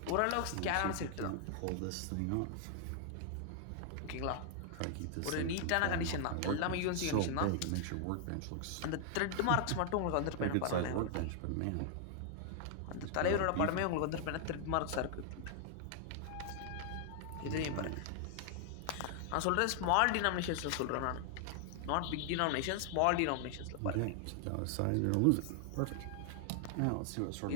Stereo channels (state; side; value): different; both; correlation 0.00